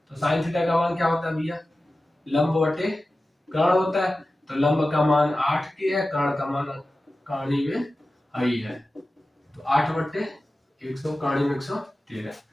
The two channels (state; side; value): normal; both; correlation 0.95